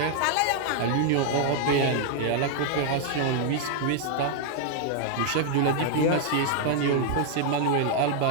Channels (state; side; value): different; both; correlation 0.00